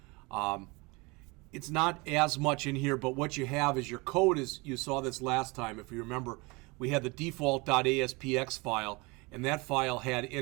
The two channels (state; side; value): quieter; left; 26.1 dB